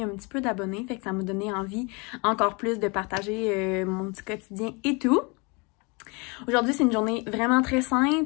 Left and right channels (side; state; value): right; quieter; 29.9 dB